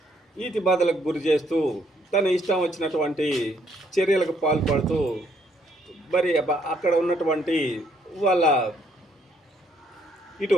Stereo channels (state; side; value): normal; both; correlation 0.69